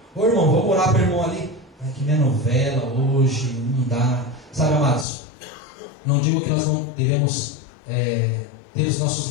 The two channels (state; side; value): drops out; right; at 5.1 s